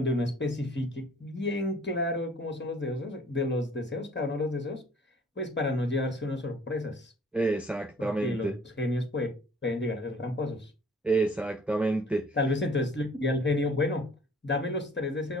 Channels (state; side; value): normal; both; correlation 0.54